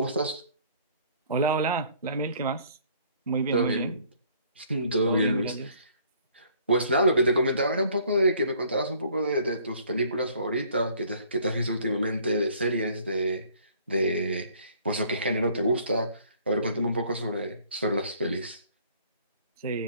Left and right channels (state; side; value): inverted; both; correlation -0.58